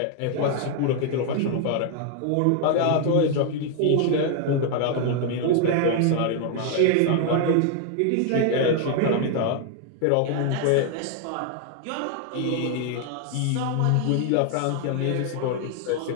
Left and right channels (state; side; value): different; both; correlation 0.00